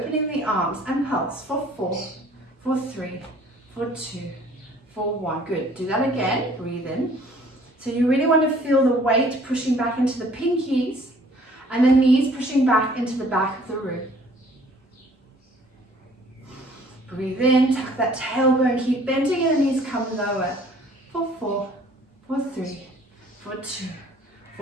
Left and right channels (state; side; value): normal; both; correlation 0.56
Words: the arms and pulse for 4, for 3, for 2, for 1. Good. Do that again. Breathe in. So you really want to feel the weight pushing back into the pinkies and the knees pushing back into the back of the room. Breathe in, tuck that tailbone, keep bending and the knees come lower. For 4, for 3, for 2,